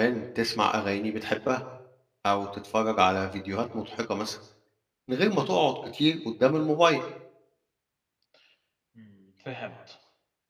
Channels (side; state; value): both; identical; correlation 1.00